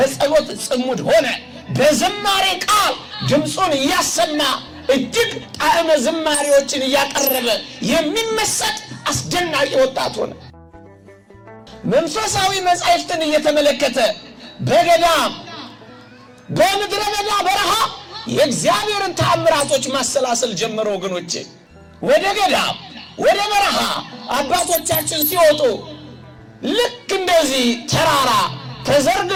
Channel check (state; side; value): identical; both; correlation 1.00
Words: ጽሙድ ሆነ። በዝማሬ ቃል ድምፁን እያሰማ እጅግ ጣዕመ ዝማሬዎችን እያቀረበ የሚመሰጥ አስደናቂ ወጣት ሆነ። መንፈሳዊ መጻሕፍትን እየተመለከተ በገዳም በምድረ በዳ በረሃ የእግዚአብሔርን ተአምራቶች ማሰላሰል ጀመረ ወገኖቼ። ወደ ገዳም ወደ በረሃ አባቶቻችን ሲወጡ ልክ እንደዚህ ተራራ